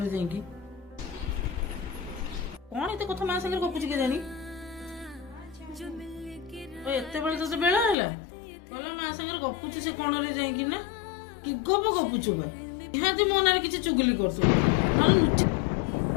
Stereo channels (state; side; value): drops out; right; at 8.0 s